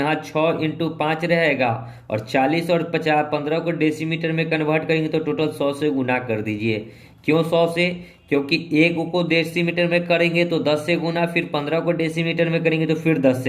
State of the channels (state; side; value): identical; both; correlation 1.00